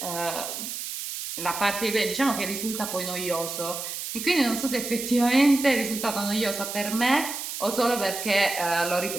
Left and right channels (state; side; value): noise; right; hiss, 6 dB below the sound